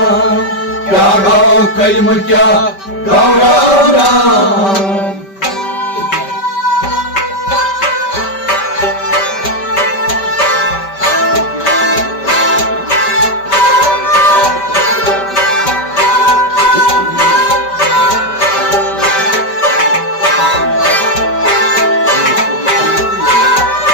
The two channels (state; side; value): late; right; 5.1 ms